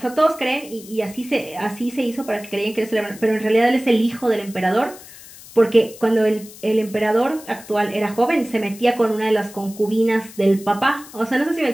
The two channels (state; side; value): noise; left; hiss, 18 dB below the sound